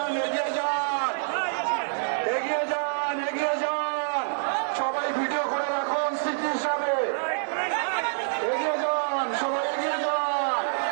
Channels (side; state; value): left; silent; 60 dB below the other